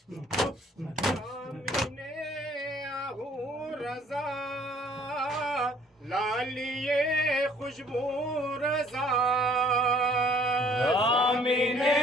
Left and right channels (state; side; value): normal; both; correlation 0.58